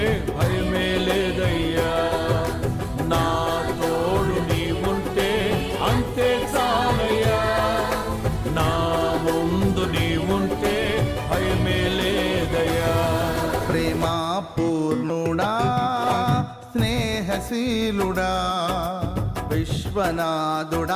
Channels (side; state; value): both; identical; correlation 1.00